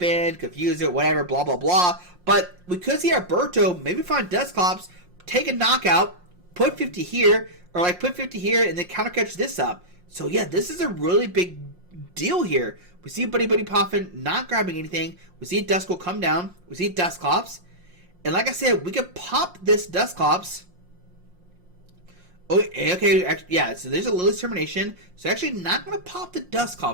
confuse it, whatever, blah, blah, blah. But we could see Alberto maybe find Dusclops, take a knockout, put 50 here, or like put 50 here and then counter catch this up. So yeah, this is a really big deal here. We see Buddy Buddy Poffin not grabbing anything. We see Duskull come down. We see Dusclops. And like I said, we could pop this Dusclops. Oh, okay, yeah, so there's a Lily's Termination. So actually not going to pop the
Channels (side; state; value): left; late; 5.6 ms